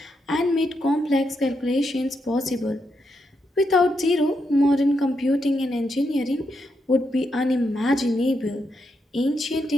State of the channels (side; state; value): both; normal; correlation 0.82